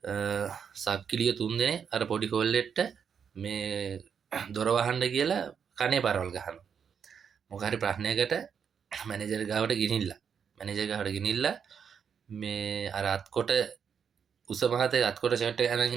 සක්කිලිය 3 දෙනේ අර පොඩි කොල්ලෙට්ට මේ දොර වහන්න කියලා කනේ පරවල් ගහනවා. මොකක් හරි ප්‍රශ්නයකට මැනේජර් ගාවට ගෙනිහිල්ලා මේ අර අත්කොට උස මහතේ අත්කොට ෂර්ට් එක අරන්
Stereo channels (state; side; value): quieter; left; 7.1 dB